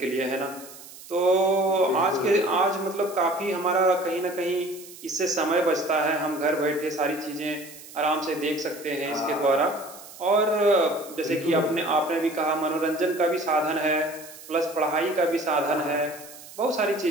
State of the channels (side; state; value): right; noise; hiss, 17 dB below the sound